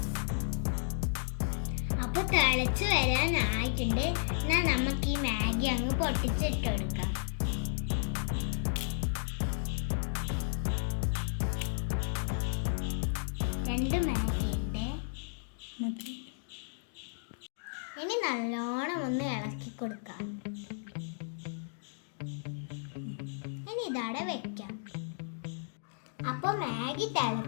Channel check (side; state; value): right; silent; digital silence